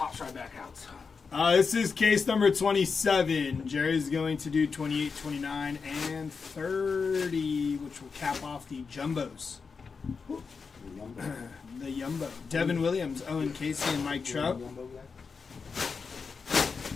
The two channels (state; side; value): quieter; right; 5.2 dB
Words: right back out. This is case number 27. Jerry's going to do 28, 29, and 30, which will cap off the jumbos. The Yumbo. Devin Williams, Owen Casey, and Mike Trout.